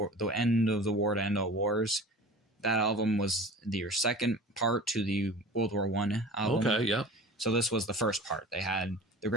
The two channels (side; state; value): both; normal; correlation 0.39